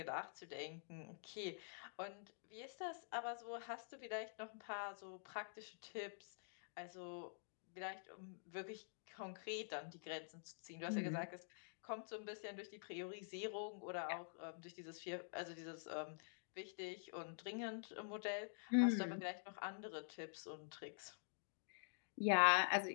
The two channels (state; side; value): silent; right; digital silence